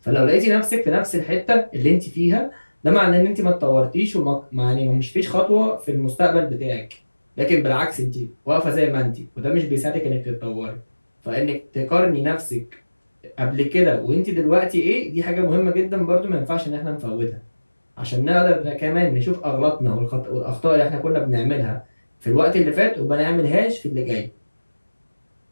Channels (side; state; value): both; inverted; correlation -1.00